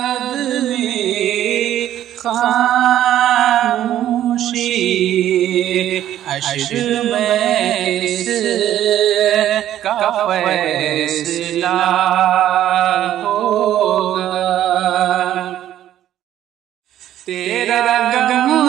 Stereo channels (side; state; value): left; quieter; 12.0 dB